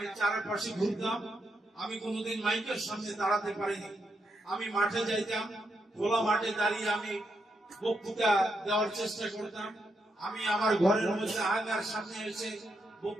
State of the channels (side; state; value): both; normal; correlation 0.81